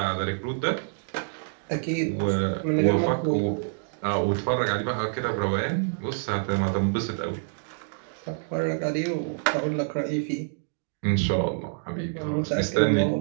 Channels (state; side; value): silent; left; digital silence